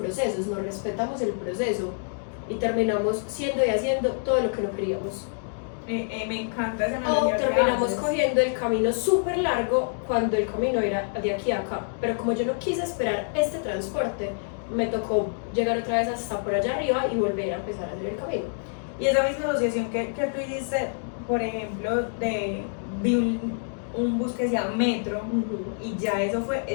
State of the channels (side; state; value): right; silent; digital silence